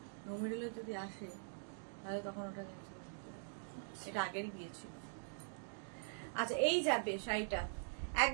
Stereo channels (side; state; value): left; silent; digital silence